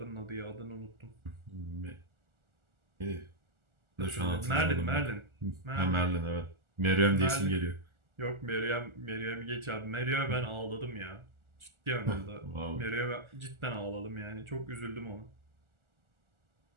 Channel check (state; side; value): late; left; 1.4 ms